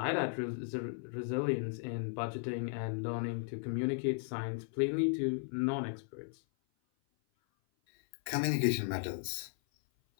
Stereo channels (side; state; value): right; silent; 54 dB below the other